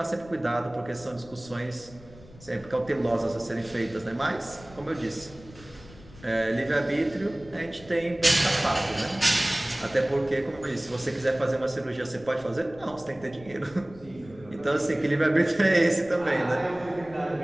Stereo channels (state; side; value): noise; left; rumble, 21 dB below the sound